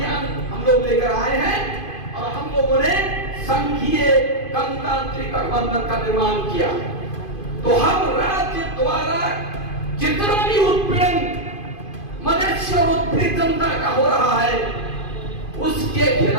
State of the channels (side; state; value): right; late; 2.5 ms